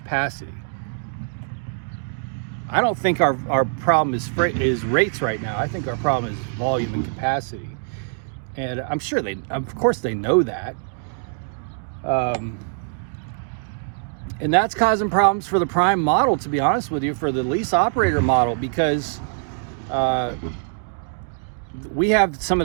I don't think our problem is rates right now. I think our problem is volume and capacity. And I'm sure of course they know that. And that's causing problems for the prime model, to be honest with you, for the lease operator model, because we have some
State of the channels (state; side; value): silent; left; digital silence